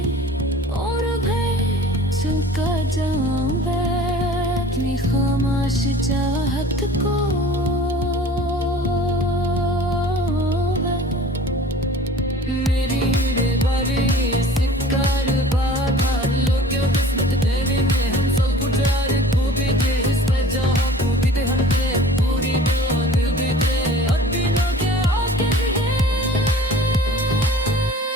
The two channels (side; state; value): both; normal; correlation 0.45